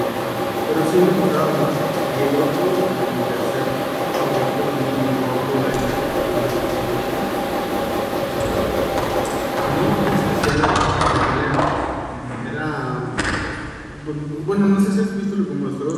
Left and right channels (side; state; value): both; identical; correlation 1.00